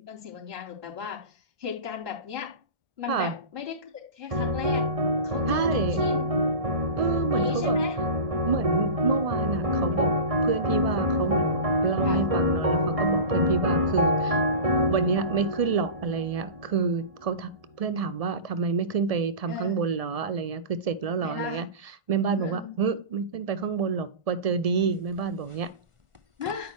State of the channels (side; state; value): left; late; 1.7 ms